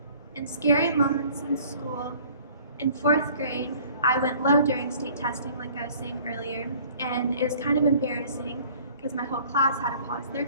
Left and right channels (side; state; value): both; inverted; correlation -0.52